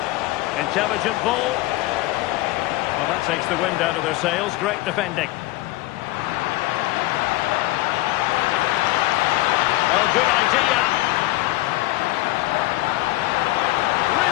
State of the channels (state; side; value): quieter; right; 18.4 dB